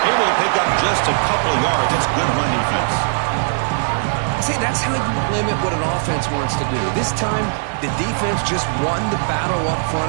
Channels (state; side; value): silent; left; digital silence